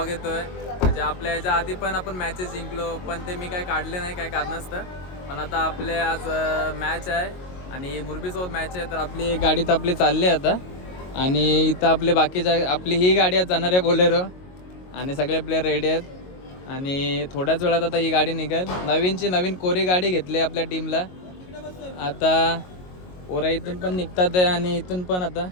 येतो आहे. म्हणजे आपल्या ह्याच्या आधी पण आपण मॅचेस जिंकलो, पण ते मी काय काढले नाही काय कारणास्तव. पण आता आपले आज मॅच आहे आणि मुरबीसोबत मॅच आहे. तर आपली एक गाडी तर आपली चालली आहे आता. आणि इथं आपले बाकीच्या आपली ही गाडी आज जाणार आहे बोलेरो. आणि सगळे प्लेयर रेडी आहेत. आणि थोड्याच वेळात आता ही गाडी निघेल. नवीन कोरी गाडी घेतली आपल्या टीमला. आता पोरा इथून पण निघतात आहे आणि इथून पण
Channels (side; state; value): right; late; 22 ms